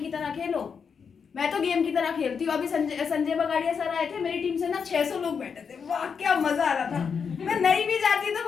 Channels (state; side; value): quieter; right; 6.3 dB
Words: तरह खेलो। मैं तो गेम की तरह खेलती हूँ। अभी संजय बगाड़िया सर आए थे, मेरी टीम से ना 600 लोग बैठे थे, वाह क्या मजा आ रहा था। मैं नहीं भी जाती तो